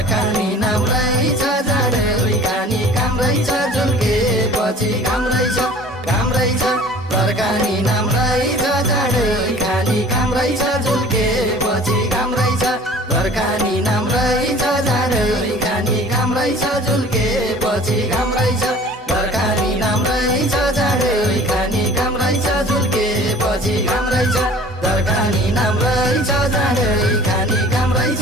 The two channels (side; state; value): both; normal; correlation 0.47